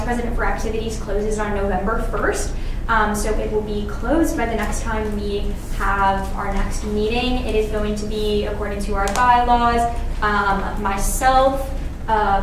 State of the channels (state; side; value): identical; both; correlation 1.00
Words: President for Activities closes on November 1st. So it will be closed by the next time we have our next meeting. It is going to be, according to our bylaws, myself,